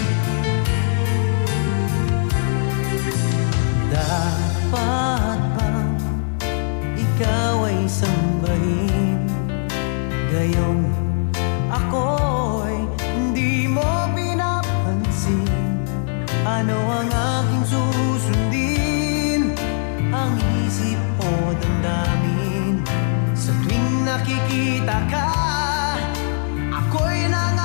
Dapat bang ikaw ay sambahin? Gayong ako'y hindi mo pinapansin. Ano ang aking susundin? Ang isip o damdamin? Sa tuwing nakikita ka, ako'y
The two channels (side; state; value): right; silent; 65 dB below the other